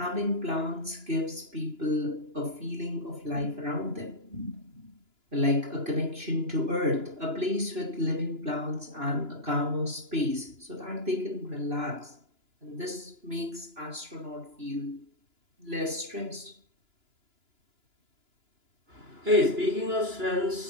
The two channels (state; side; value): late; left; 2.9 ms